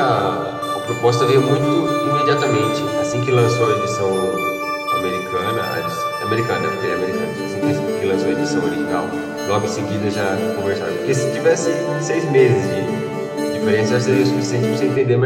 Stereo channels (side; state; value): both; identical; correlation 1.00